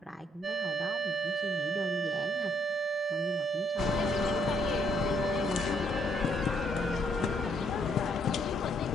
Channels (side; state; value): both; normal; correlation 0.70